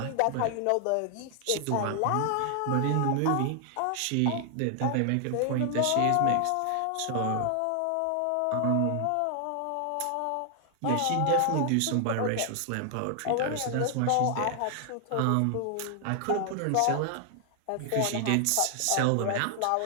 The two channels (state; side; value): different; both; correlation 0.00